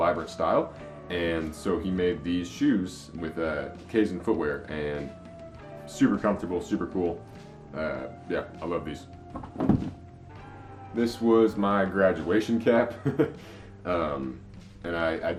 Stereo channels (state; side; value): identical; both; correlation 1.00